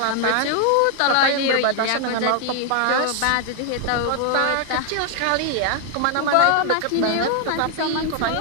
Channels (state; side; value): different; both; correlation 0.00